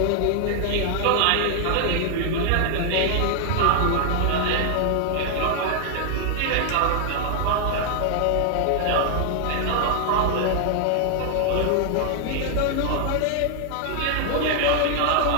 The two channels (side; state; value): both; different; correlation 0.00